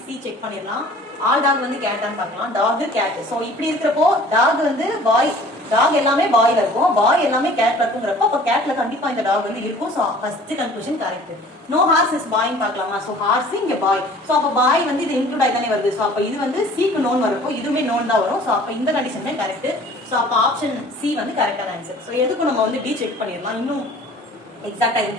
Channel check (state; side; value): normal; both; correlation 0.49